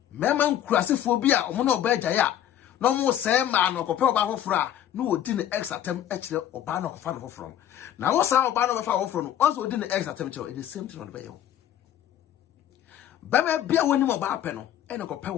mema nkurasefo bi a omo na oba agaya no mo se ma no kope oba hofra no odi ne ex attempt ekire oba na kofa no hofro na wo sa oba no befa hofro no once odi ne ex attempt e the same thing on the bay ba me bia woni mo ba pe no e ne kope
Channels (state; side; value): quieter; right; 10.9 dB